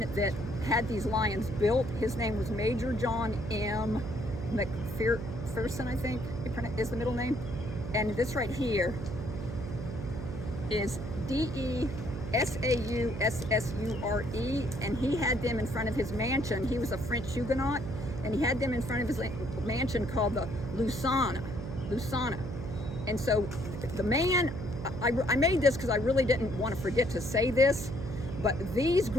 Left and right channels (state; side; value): noise; right; hum, 7 dB below the sound